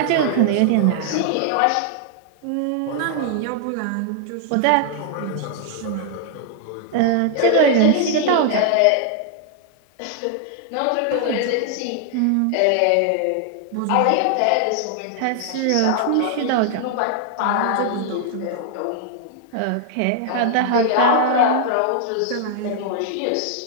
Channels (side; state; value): both; different; correlation 0.00